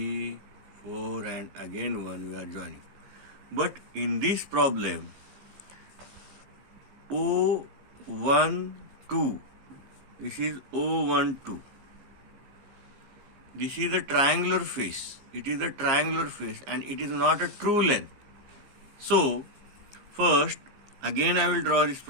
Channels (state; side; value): late; left; 15 ms